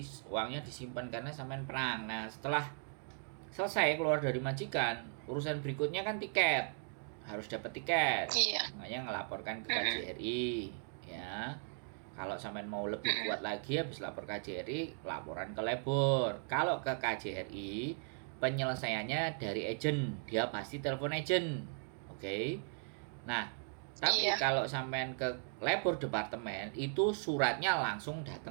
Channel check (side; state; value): left; silent; 53 dB below the other